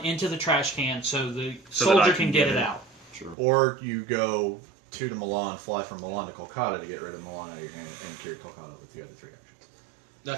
into the trash can so the So that I soldier can can get get it it. out. True. Or you go 2 to Milan, fly from Milan to Kolkata to get rid of Milan out of your hand, and carry Kolkata with the other 3 actions.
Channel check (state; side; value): drops out; left; at 3.4 s